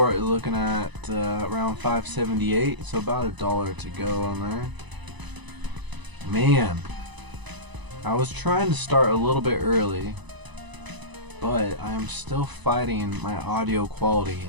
is looking at around 578, so about $1 to go on there. Man, I was trying to start a little bit early, but I am still fighting my audio quality,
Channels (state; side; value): late; left; 1.0 ms